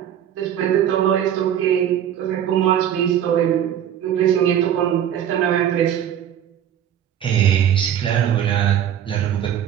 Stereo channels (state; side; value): quieter; left; 10.0 dB